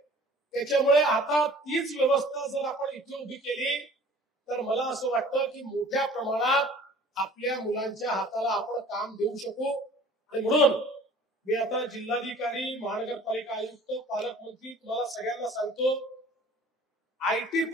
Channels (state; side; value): normal; both; correlation 0.49